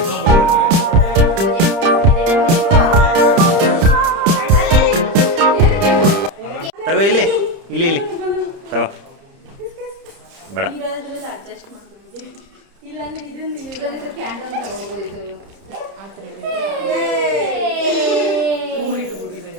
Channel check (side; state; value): left; late; 30 ms